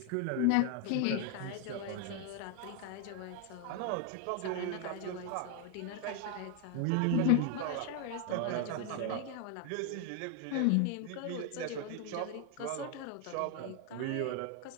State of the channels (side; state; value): both; different; correlation 0.01